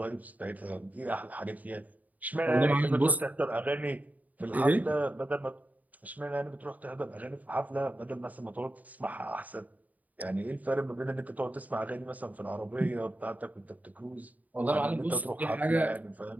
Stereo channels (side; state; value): left; late; 0.076 ms